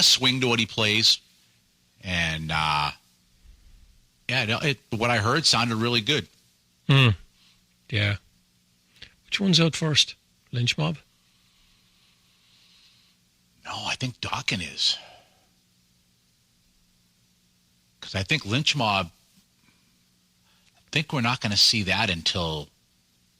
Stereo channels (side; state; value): both; identical; correlation 1.00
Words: swing to what he plays, and what I heard sounded really good. Yeah. Which one's out first? Lynch Mob? No, I think Dokken is, because I think Lynch Mob. I think we're not going to see that until